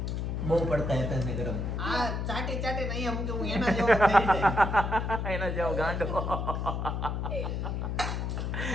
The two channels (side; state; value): left; noise; hum, 2 dB below the sound